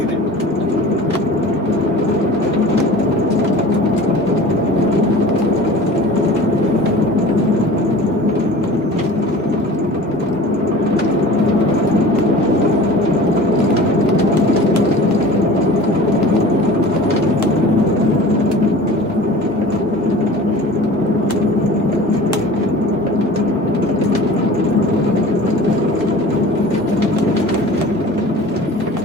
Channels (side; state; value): both; normal; correlation 0.41